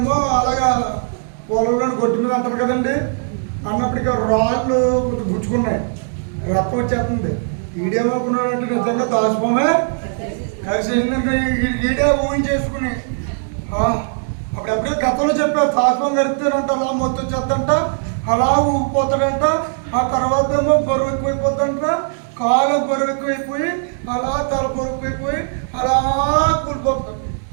అలాగా పొలంలో గొడ్డు మీద అంటారు కదండి, అన్నప్పటికీ రాళ్ళు గుచ్చుకున్నాయి, రక్తం వచ్చేస్తుంది. ఈడేమనుకున్నాడంటే నిజంగా దాచిపోమే కలిసేసిందంటే ఈడే ఊహించేసుకుని అప్పుడెప్పుడే గతంలో చెప్పారు తాత్వం గడితేనంట అలా మొత్తం వచ్చేద్దంట, అలా ఊగిపోతాడంట. ఆ తర్వాత ఏమో బరువు ఎక్కువైపోద్దంట, కాలు బరువెక్కువైపోయి అలా తల బరువైపోయి అలా కూలిపోతారు.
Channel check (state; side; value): silent; left; 66 dB below the other